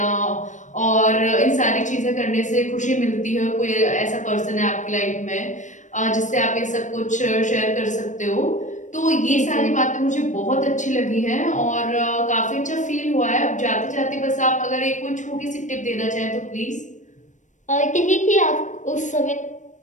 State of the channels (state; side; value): late; right; 0.36 ms